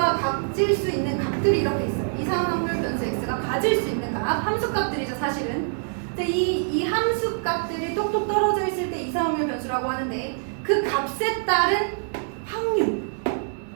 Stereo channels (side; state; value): left; silent; digital silence